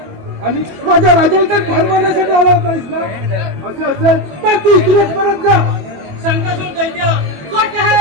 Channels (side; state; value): left; late; 21 ms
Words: आणि माझ्या राजाला ठार मारण्यासाठी आला नाहीस ना? असं असेल तर तू इथूनच परत जा. शंकासूर दैत्य खोटे